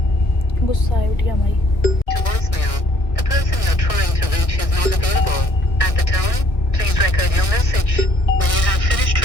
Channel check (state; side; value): late; right; 1.8 ms